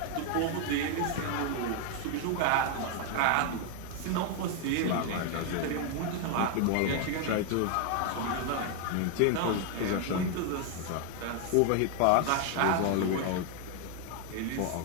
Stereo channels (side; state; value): both; different; correlation 0.00